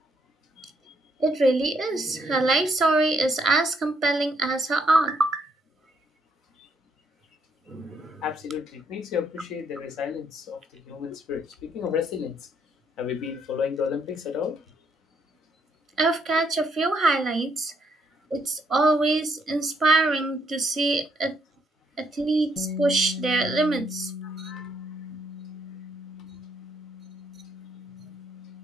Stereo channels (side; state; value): both; normal; correlation 0.72